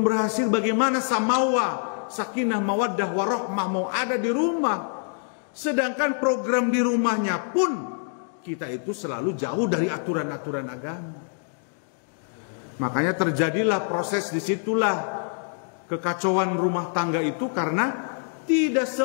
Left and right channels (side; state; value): right; silent; 61 dB below the other